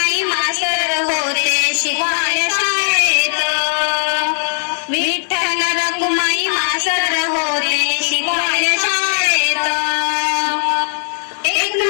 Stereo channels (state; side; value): silent; right; 68 dB below the other